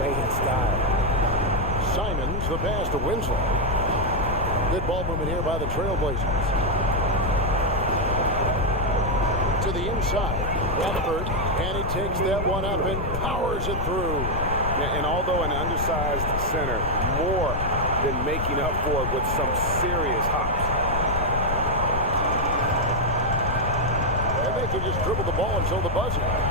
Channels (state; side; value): noise; left; rumble, 3 dB below the sound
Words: in style. Simons, the pass to Winslow. Good ball movement here by the Trailblazers. To the inside, Radford, and he takes that one up and powers it through. And although an undersized center, more than making up for it with some serious hops. And they can just dribble the ball until the buzzer.